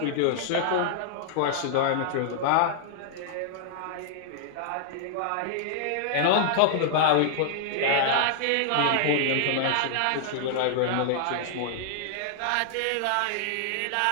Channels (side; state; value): both; different; correlation -0.01